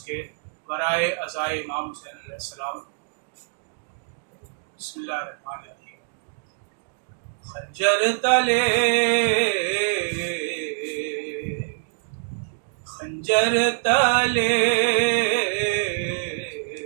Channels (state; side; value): silent; left; digital silence